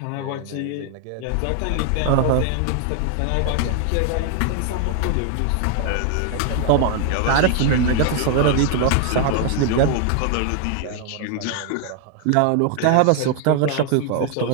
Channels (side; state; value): both; different; correlation 0.00